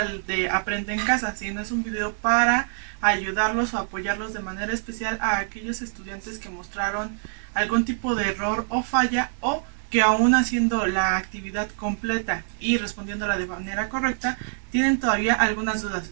de Aprende en Casa, sino es un video para ayudarlos o apoyarlos de manera especial a aquellos estudiantes que mostraron algún tipo de error o falla, o que aún haciendo la actividad completa y respondiéndola de manera correcta, tienen todavía algunas dudas.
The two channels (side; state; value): left; silent; digital silence